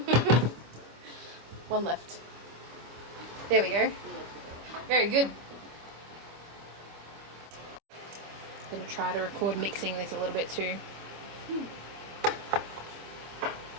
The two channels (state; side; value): late; left; 25 ms